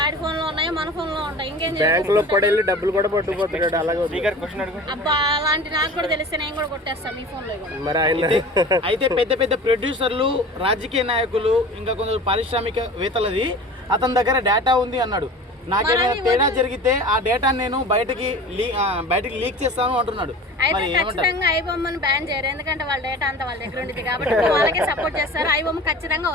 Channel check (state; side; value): normal; both; correlation 0.38